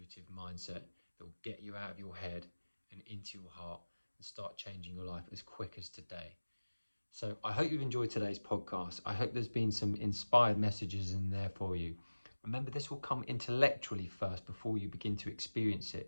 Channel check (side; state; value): both; inverted; correlation -1.00